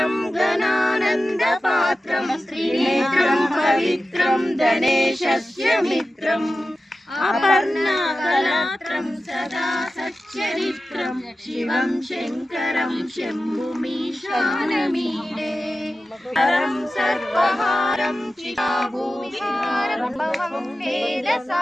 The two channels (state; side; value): normal; both; correlation 0.94